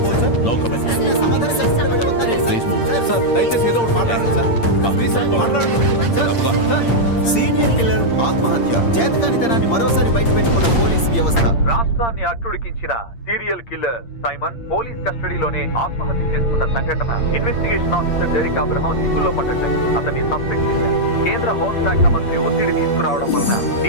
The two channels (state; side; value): late; right; 8.7 ms